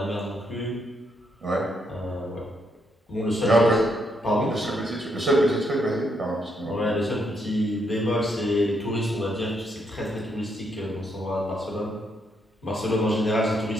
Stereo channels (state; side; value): normal; both; correlation 0.76